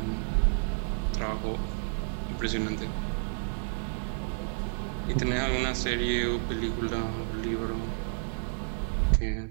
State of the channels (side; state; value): left; silent; digital silence